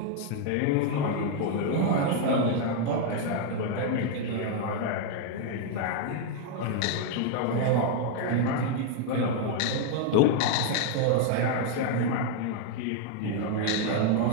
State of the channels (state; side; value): different; both; correlation 0.00